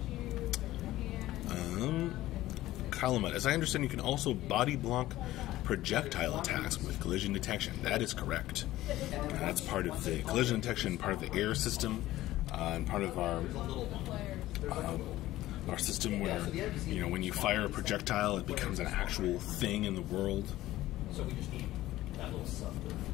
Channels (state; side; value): quieter; right; 15.7 dB